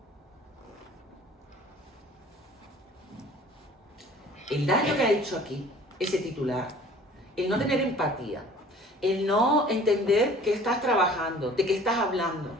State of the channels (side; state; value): both; normal; correlation 0.50